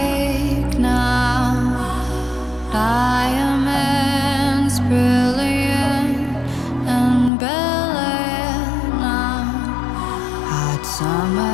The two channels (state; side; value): drops out; right; at 7.3 s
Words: now. Diamonds brilliant and brilliant now. Hot